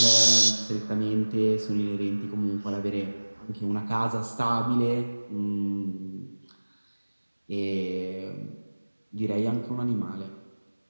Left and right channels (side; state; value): both; inverted; correlation -1.00